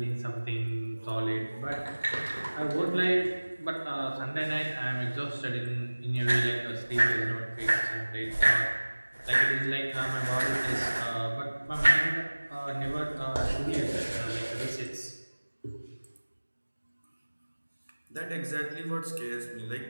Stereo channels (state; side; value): inverted; both; correlation -1.00